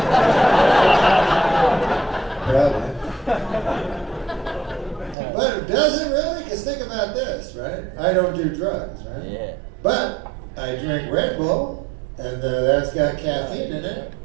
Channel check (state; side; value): drops out; left; at 5.2 s